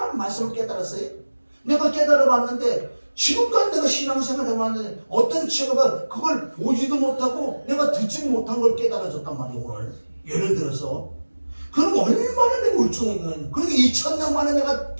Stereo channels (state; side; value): inverted; both; correlation -1.00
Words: 말씀을 깨달았어요. 내가 깨달아봤는데 지금까지 내가 신앙생활 해봤는데 어떤 친구가 그걸 보지도 못하고 내가 듣지도 못한 걸 깨달아줬단 말이에요. 오늘 예를 들어서 그럼 얼마나 내가 울퉁했냐. 그러니까 2000년 만에 내가